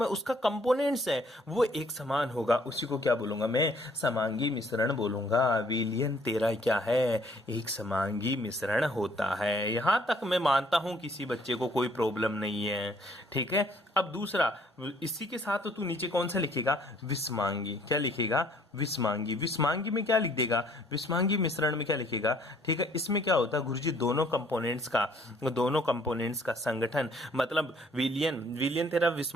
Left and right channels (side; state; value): both; normal; correlation 0.61